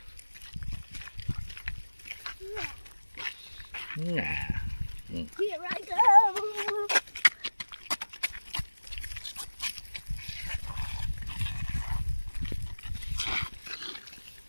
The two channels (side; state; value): both; inverted; correlation -1.00